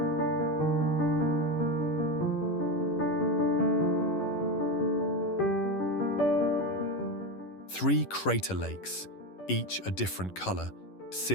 Three crater lakes, each a different color,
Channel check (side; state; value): right; late; 11 ms